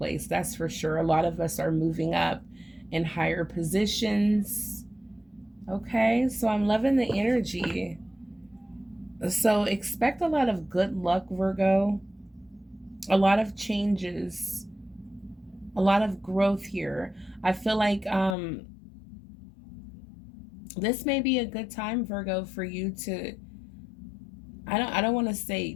That's for sure. A lot of us are moving up in higher positions. Okay, so I'm loving the energy. So expect a lot of good luck, Virgo. A lot of changes. A lot of growth here. I feel like this may be a good time, Virgo, for you to, I don't want to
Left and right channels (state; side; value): drops out; right; at 18.4 s